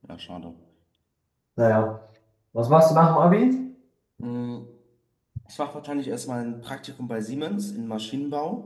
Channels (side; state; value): both; identical; correlation 1.00